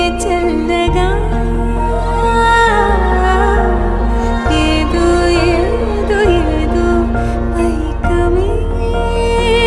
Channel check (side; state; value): both; identical; correlation 1.00